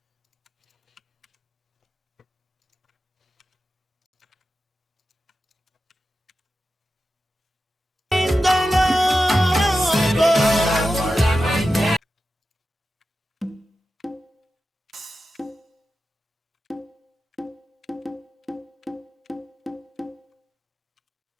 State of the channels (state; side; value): normal; both; correlation 0.92